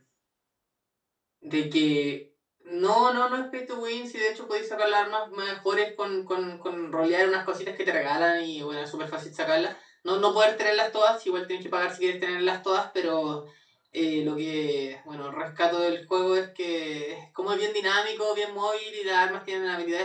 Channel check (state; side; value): identical; both; correlation 1.00